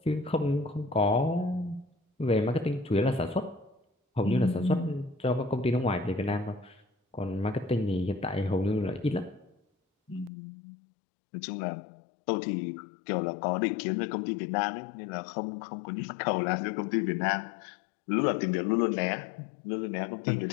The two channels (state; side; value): drops out; right; at 10.3 s